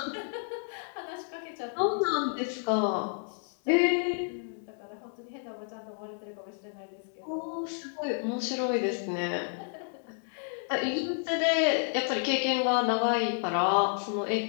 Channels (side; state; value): right; silent; 57 dB below the other